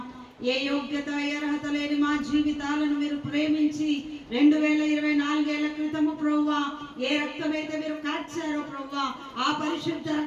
ఏ యోగ్యత ఏ అర్హత లేని మా జీవితాలను మీరు ప్రేమించి 2024 క్రితము ప్రభువా ఏ రక్తమైతే మీరు కార్చారో ప్రభువా ఆ పరిశుద్ధ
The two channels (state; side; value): identical; both; correlation 1.00